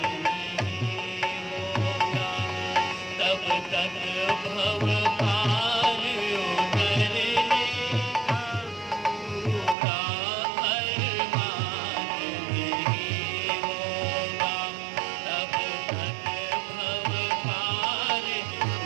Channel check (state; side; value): drops out; left; at 9.8 s